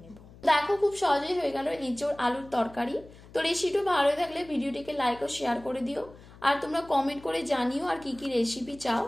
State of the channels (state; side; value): noise; left; hum, 21 dB below the sound